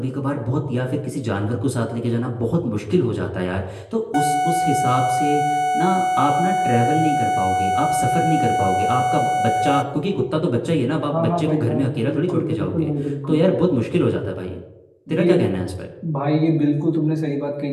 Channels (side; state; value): both; identical; correlation 1.00